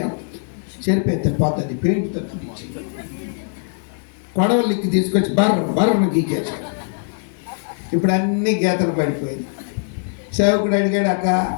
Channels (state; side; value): silent; right; digital silence